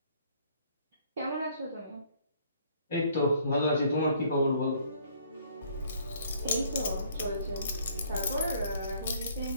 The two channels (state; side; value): inverted; both; correlation -0.61